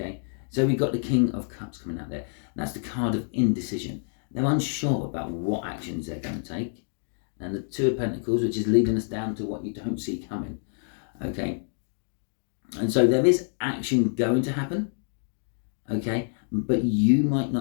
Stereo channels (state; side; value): silent; right; 60 dB below the other